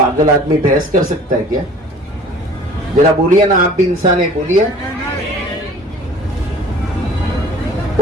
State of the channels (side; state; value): both; normal; correlation 0.48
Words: आदमी बहस कर सकता है क्या? जरा बोलिए ना, आप भी इंसान है, बोलिए।